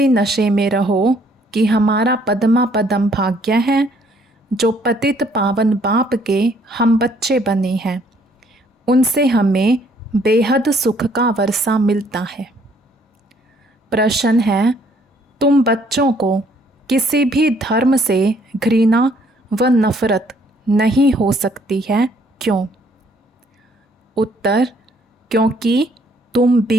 नशे में रहो कि हमारा पद्मा पदम भाग्य है। जो पतित पावन बाप के हम बच्चे बने हैं, उनसे हमें बेहद सुख का वर्षा मिलता है। प्रश्न है, तुम बच्चों को किसी भी धर्म से घृणा व नफरत नहीं हो सकती है, क्यों? उत्तर, क्योंकि तुम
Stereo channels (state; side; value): normal; both; correlation 0.64